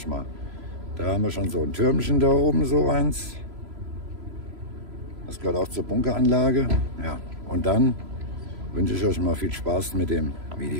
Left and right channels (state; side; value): late; left; 3.0 ms